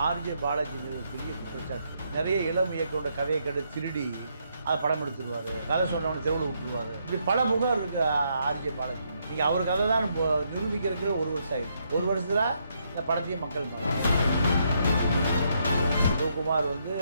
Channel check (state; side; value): inverted; both; correlation -0.76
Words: ஆர்ஜே பாலாஜி பெரிய குற்றச்சாட்டு. நிறைய இளம் இயக்கோட கதையை கண்டு திருடி அதை படம் எடுத்துருவாரு, கதை சொன்னவனை தெருவில் விட்டுருவாரு. இப்படி பல புகார் இருக்கு ஆர்ஜே பாலாஜி. நீங்கள் அவர் கதை தான் நிரூபிக்கிறதுக்கு ஒரு வருஷம் ஆயிடுச்சு. ஒரு வருஷத்துல இந்த படத்தையே மக்கள் பார்க்கலாம். சிவகுமார் வந்து